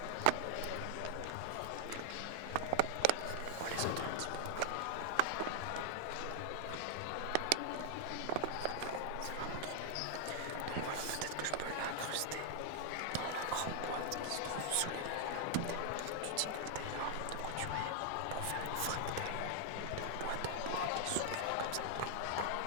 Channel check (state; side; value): different; both; correlation 0.00